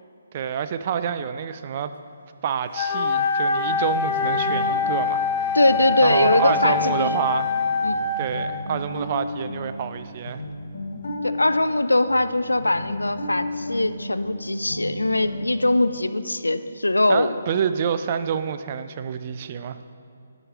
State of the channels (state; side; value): inverted; both; correlation -0.67